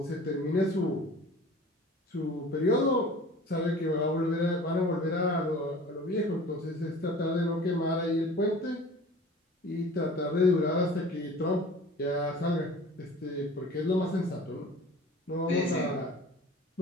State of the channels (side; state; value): both; normal; correlation 0.43